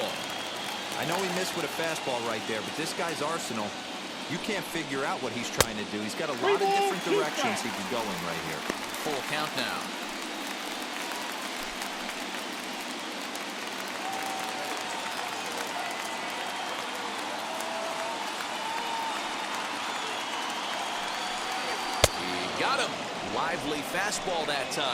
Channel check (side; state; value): both; identical; correlation 1.00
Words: I know he missed with a fastball right there, but this guy's arsenal, you can't figure out what he's trying to do. He's got a lot of different directions he could go in right here. Full count now. He got him. Lively fastball that